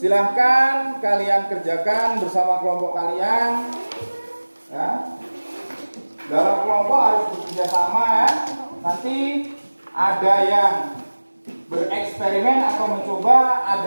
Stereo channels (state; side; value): inverted; both; correlation -1.00